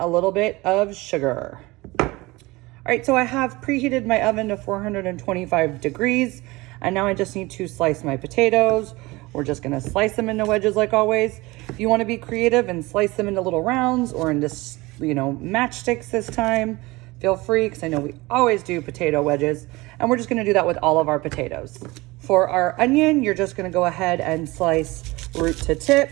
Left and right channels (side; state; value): left; quieter; 21.8 dB